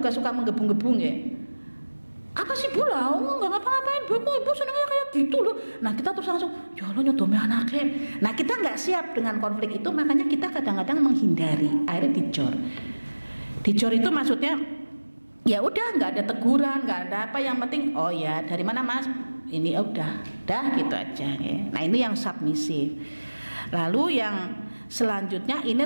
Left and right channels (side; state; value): both; inverted; correlation -1.00